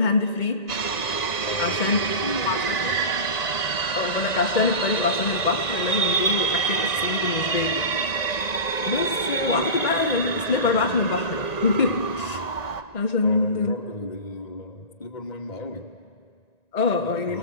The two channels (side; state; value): right; late; 1.9 ms